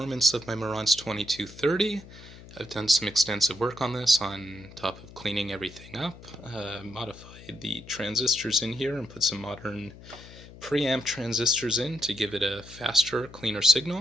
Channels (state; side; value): noise; left; hum, 18 dB below the sound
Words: of my Marantz 2230. I've done some extensive work on this on top of cleaning everything up, modified the transistors in here and put some modern preamp transistors in to give it a faster, cleaner